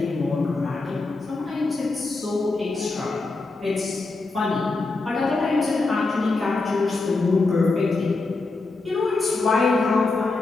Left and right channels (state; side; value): quieter; right; 3.6 dB